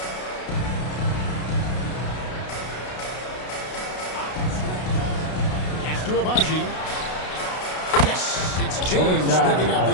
Pass to Abaji. Yes, it's James picking up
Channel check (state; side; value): late; right; 32 ms